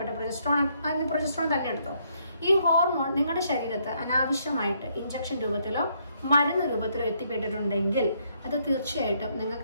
പ്രൊജസ്ട്രോൺ തന്നെ എടുത്തോ, ഈ ഹോർമോൺ നിങ്ങളുടെ ശരീരത്ത് അനാവശ്യമായിട്ട് ഇഞ്ചക്ഷൻ രൂപത്തിലോ മരുന്ന് രൂപത്തിലോ എത്തിപ്പെട്ടിട്ടുണ്ടെങ്കിൽ അത് തീർച്ചയായിട്ടും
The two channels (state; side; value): inverted; both; correlation -0.72